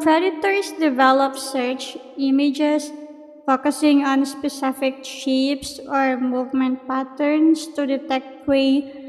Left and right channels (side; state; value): both; identical; correlation 1.00